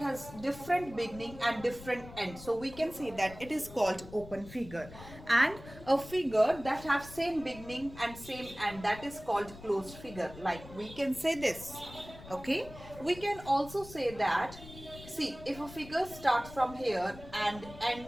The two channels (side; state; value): left; noise; rumble, 16 dB below the sound